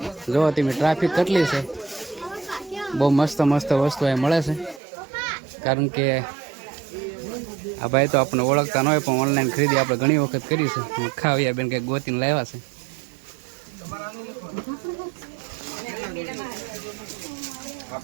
જો તમે ટ્રાફિક કેટલી છે. બહુ મસ્ત મસ્ત વસ્તુ અહીં મળે છે. કારણ કે આ ભાઈ તો આપણને ઓળખતા ન હોય પણ ઓનલાઈન ખરીદી આપણે ઘણી વખત કરી છે. ખાવ્યા બેન કંઈક ગોતીને લાવ્યા છે.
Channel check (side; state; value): left; drops out; at 4.8 s